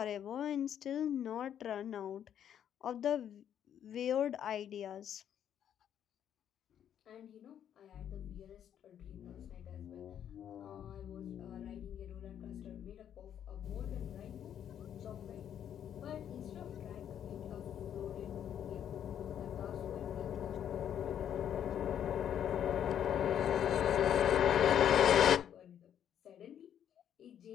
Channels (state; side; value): quieter; right; 9.6 dB